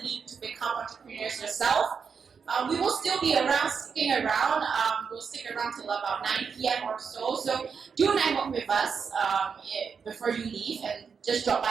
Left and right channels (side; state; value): left; quieter; 6.0 dB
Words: leap to become entrepreneurs yourself. We will still be sticking around. We'll stick around till about 9 p.m. or so. So do network with us before you leave, and just drop